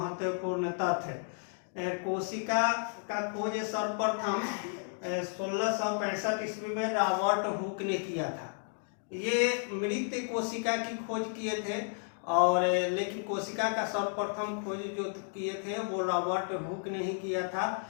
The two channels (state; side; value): silent; right; 56 dB below the other